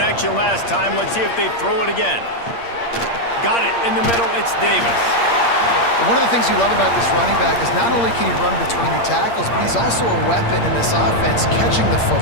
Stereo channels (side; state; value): right; late; 8.6 ms